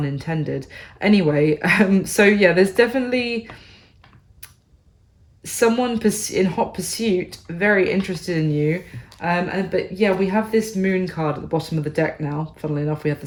intended. Anyway, so yeah, there's definitely someone in hot pursuit, very interested in you. But yeah, we have this Moon card at the bottom of the deck now. Funnily enough, we had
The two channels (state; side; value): identical; both; correlation 1.00